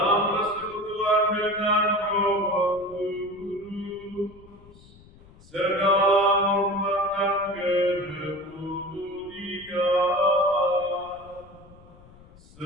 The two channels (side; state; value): left; noise; rumble, 23 dB below the sound